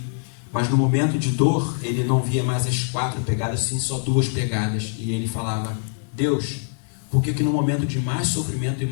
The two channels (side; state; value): right; silent; digital silence